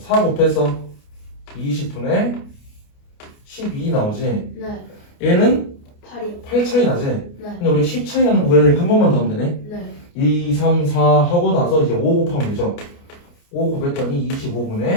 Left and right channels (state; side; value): late; right; 29 ms